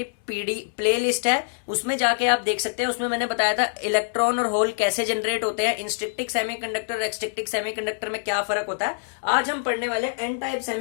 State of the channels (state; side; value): silent; right; digital silence